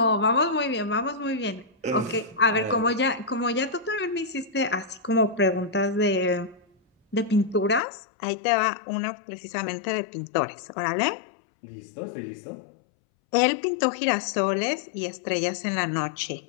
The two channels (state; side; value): drops out; right; at 7.8 s